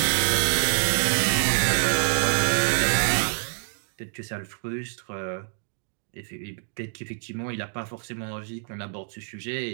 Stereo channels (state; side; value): silent; left; digital silence